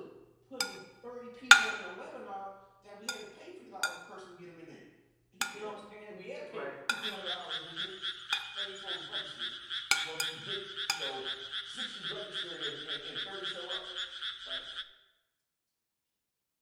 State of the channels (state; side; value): identical; both; correlation 1.00